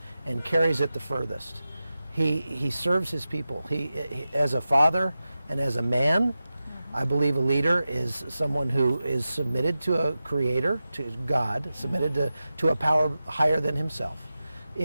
and carries it the furthest. He serves his people. He as a father and as a man, I believe a leader is someone who is submitted to a creator, to God, submitted to a power higher than himself.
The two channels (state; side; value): inverted; both; correlation -0.94